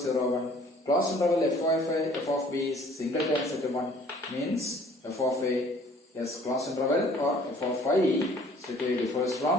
1. Closed interval f of b is singleton set 1. Means f of a is closed interval or f of I strictly differs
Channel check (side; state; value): both; normal; correlation 0.55